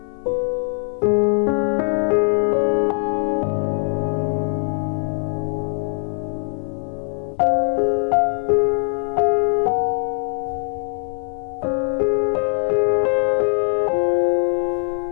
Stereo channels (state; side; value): silent; right; 60 dB below the other